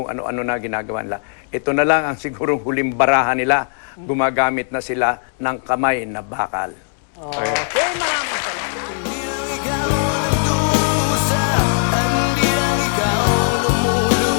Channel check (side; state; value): right; silent; 60 dB below the other